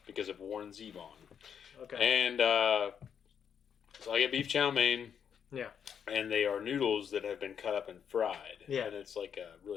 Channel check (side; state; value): right; quieter; 7.8 dB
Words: Because of Warren Zevon. Okay. And so I get beef chow mein. Yeah. And they are noodles that have been cut up and fried. Yeah. And it's like a